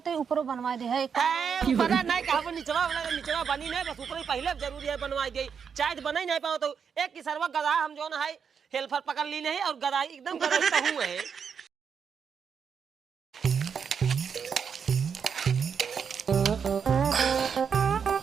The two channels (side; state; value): left; quieter; 6.8 dB